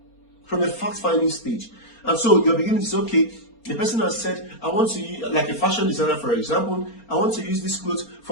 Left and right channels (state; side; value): late; right; 4.3 ms